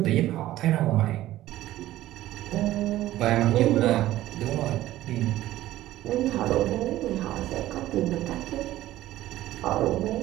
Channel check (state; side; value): quieter; left; 14.9 dB